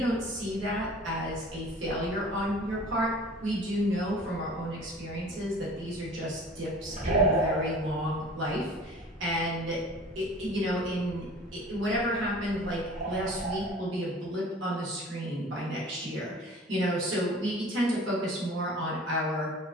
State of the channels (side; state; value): both; normal; correlation 0.44